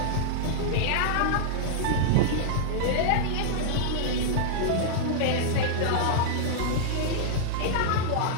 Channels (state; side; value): different; both; correlation -0.01